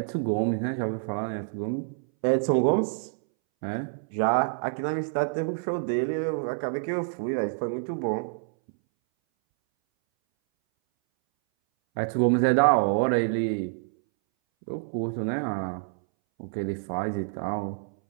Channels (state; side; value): silent; left; 60 dB below the other